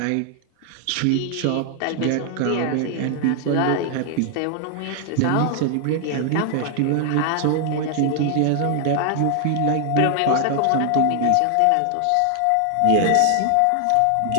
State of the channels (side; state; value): both; different; correlation 0.00